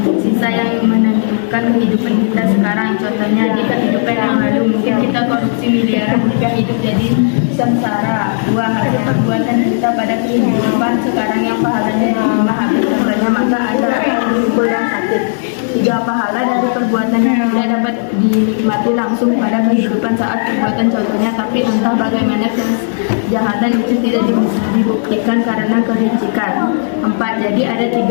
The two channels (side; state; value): right; silent; digital silence